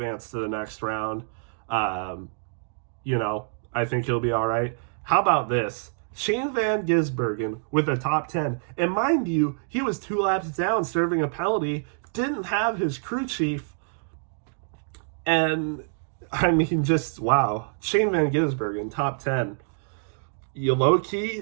to the next round. I think he'll be all right. How about this? Shane Van Gisbergen with a top 10. And mind you, he was 2 laps down serving a penalty, didn't have his crew chief. And, I mean, just, wow. Shane Van Gisbergen, top 10.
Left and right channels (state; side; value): silent; left; digital silence